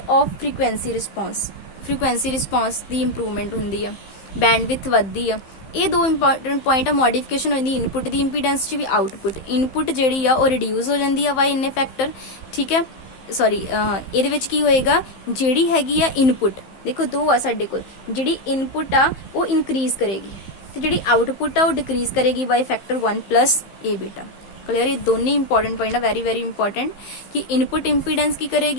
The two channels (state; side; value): late; right; 15 ms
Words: ऑफ फ्रीकुएंसी रिस्पॉन्स की इंप्रूवमेंट होंदी है, बैंडविथ वधदी है। ये दो इंपॉर्टेंट पॉइंट है। मॉडिफिकेशन होंदी इनपुट की इंपीडेंस च भी आउटपुट, इनपुट जिहड़ी आ वो रिड्यूस हो जाती है बाय इन्ने फैक्टर, ठीक है। सॉरी इहदे विच की होएगा, जिहड़ी हैगी आ इनपुट, देखो दो आ साडे कोल, जिहड़ी इनपुट आ वो इनक्रीज करेगी ते जिहड़ी आउटपुट आ वो डिक्रीज करेगी by factor 1 plus A beta. Clear. ये दोनों इंपॉर्टेंट पॉइंट है, वेरी वेरी इंपॉर्टेंट, कि इनपुट इंपीडेंस की